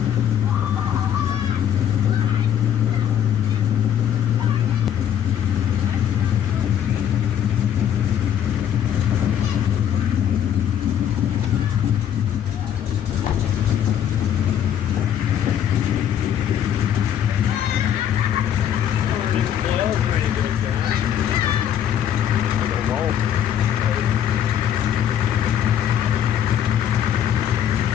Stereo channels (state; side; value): quieter; right; 9.8 dB